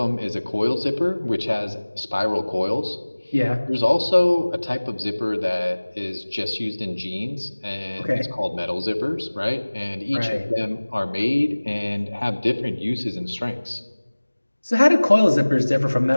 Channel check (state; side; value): inverted; both; correlation -1.00